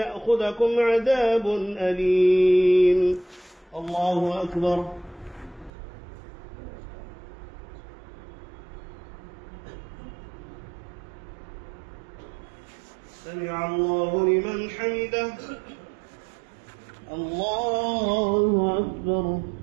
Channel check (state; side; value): drops out; left; at 5.7 s